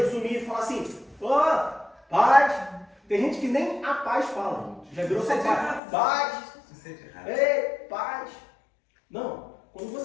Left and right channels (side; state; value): right; drops out; at 5.8 s